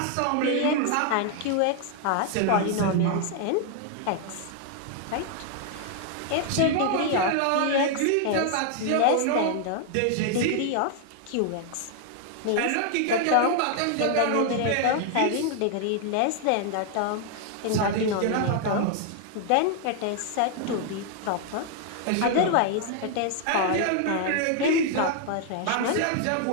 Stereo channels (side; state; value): both; different; correlation 0.00